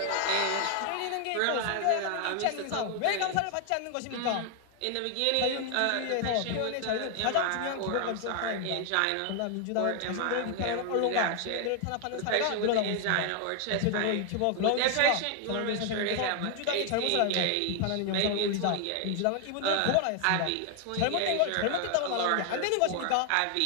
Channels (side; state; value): both; different; correlation 0.00